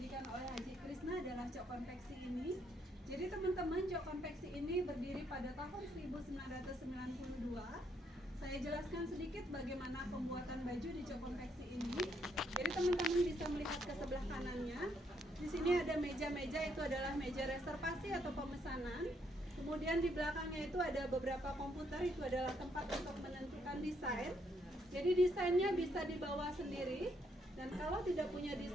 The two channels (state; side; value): normal; both; correlation 0.73